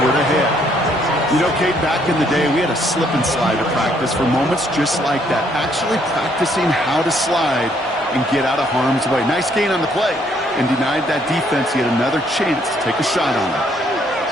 ahead. You know, Kate, back in the day, we had a slip and slide to practice for moments just like that. Actually practicing how to slide and get out of harm's way. Nice gain on the play, and denied that defense yet another chance to take a shot on it.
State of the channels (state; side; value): normal; both; correlation 0.68